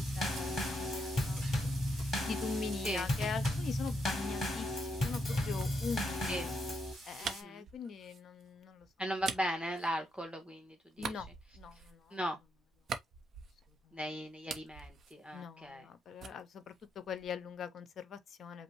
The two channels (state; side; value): normal; both; correlation 0.80